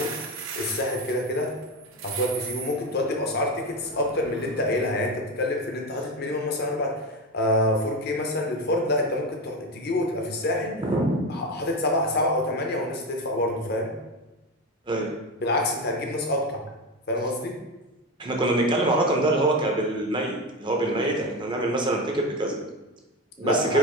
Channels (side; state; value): both; normal; correlation 0.18